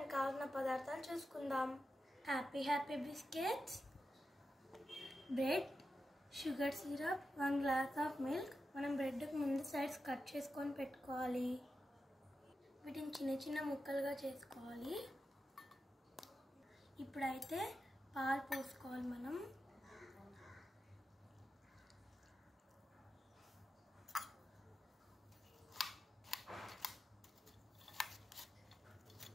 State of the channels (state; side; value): normal; both; correlation 0.90